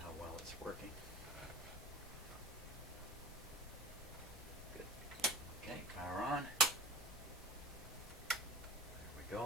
how well it's working. Good. Okay, power on. There we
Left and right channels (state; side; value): normal; both; correlation 0.33